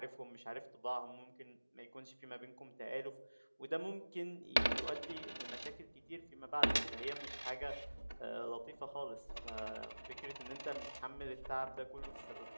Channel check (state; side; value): inverted; both; correlation -1.00